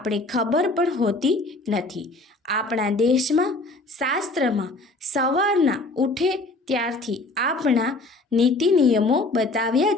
ખબર પણ હોતી નથી. આપણા દેશમાં, શાસ્ત્રમાં સવારના ઉઠે ત્યારથી આપણા નીતિ નિયમો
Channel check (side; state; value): right; quieter; 3.0 dB